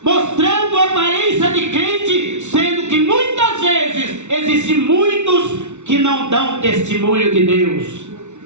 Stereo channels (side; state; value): left; late; 0.83 ms